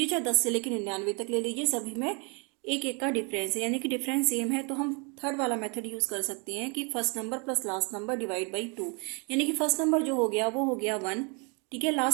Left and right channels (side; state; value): left; quieter; 33.6 dB